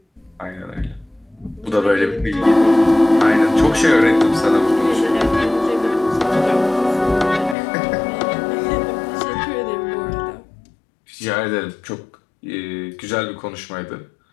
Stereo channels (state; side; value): drops out; right; at 7.6 s